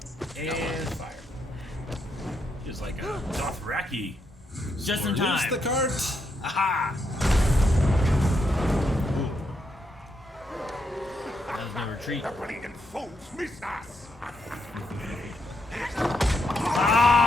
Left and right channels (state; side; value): normal; both; correlation 0.79